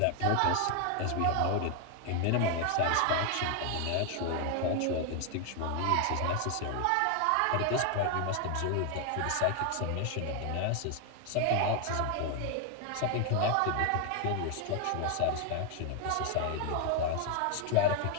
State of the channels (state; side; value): different; both; correlation 0.01